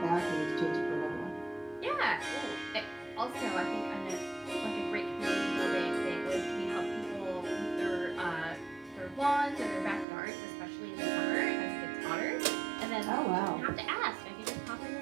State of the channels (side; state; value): left; drops out; at 10.1 s